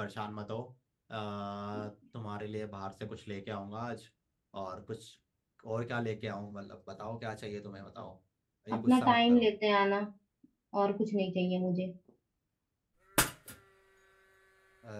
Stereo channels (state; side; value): identical; both; correlation 1.00